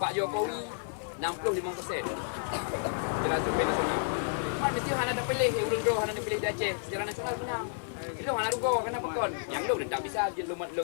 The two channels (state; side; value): silent; right; digital silence